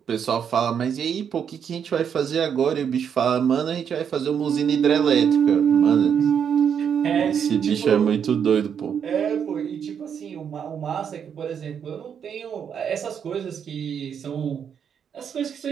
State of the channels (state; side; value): quieter; left; 7.8 dB